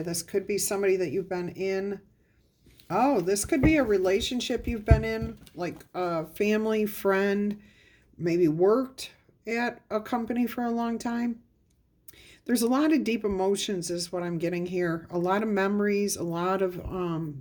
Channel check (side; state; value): both; identical; correlation 1.00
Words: this could be somebody that you've been in. Oh, this could be a relationship you've been in, like a family, friend, maybe worked at a company for a long time. There's a lot of deep emotions is what I'm getting here. A lot of memories, a lot of